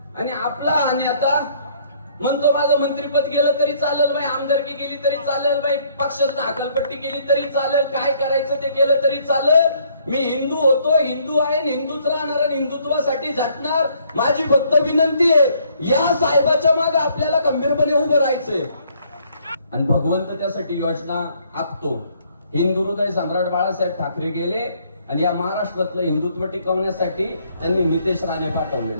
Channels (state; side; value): inverted; both; correlation -0.65